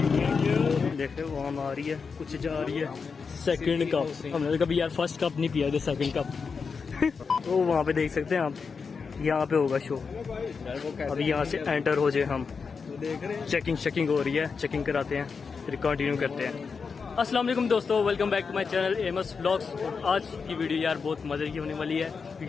देख रहे हो, वहाँ आ रही है, कुछ जा रही है। सेकंड कप हमने कभी यार फर्स्ट कप नहीं पिया, सेकंड कप। तो वहाँ पे देख सकते हैं आप, यहाँ पे होगा शो। अभी यहाँ से एंटर हो जाए हम, चेकिंग हो रही है, चेकिंग कराते हैं, फिर कंटिन्यू करते हैं। अस्सलाम वालेकुम दोस्तों, welcome back to my channel MS vlogs. आज की वीडियो यार बहुत मज़े की होने वाली है,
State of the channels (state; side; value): quieter; right; 5.3 dB